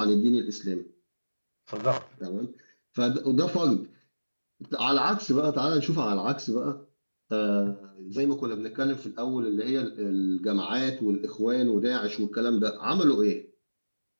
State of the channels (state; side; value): inverted; both; correlation -1.00